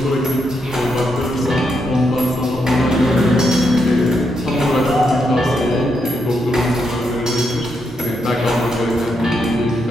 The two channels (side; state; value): both; normal; correlation 0.80